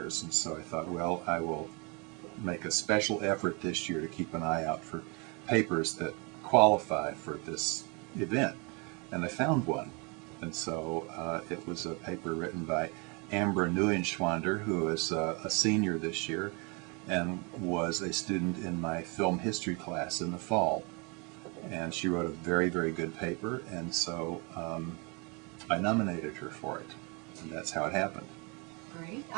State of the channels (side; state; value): left; quieter; 31.3 dB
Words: and so I thought, well, I will make a special effort this year to keep an eye out for papers that qualify for this event. And I found one. And so it was a paper written by Ambra Neuenschwander, who is a senior this year and was a student in my film history class in the fall. And she wrote a very, very good paper, and so I nominated her for it. And that's how it happened. Great.